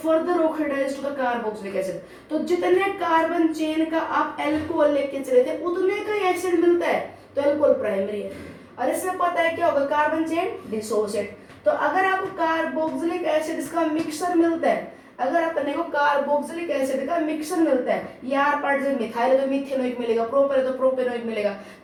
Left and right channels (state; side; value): identical; both; correlation 1.00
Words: oxidise to the carboxylic acid. तो जितने कार्बन चेन का आप अल्कोहल लेके चले थे उतने का ही एसिड मिलता है तो अल्कोहल प्राइमरी है। और इसमें पता है क्या होगा, कार्बन चेन डिसोसिएट। तो अगर आपको कार्बोक्सिलिक एसिड का मिक्सचर मिलता है, अगर अपने को कार्बोक्सिलिक एसिड का मिक्सचर मिलता है, यार पार्ट से मिथाइल है तो मिथेनोइक मिलेगा, प्रोपेन है तो प्रोपेनोइक मिलेगा,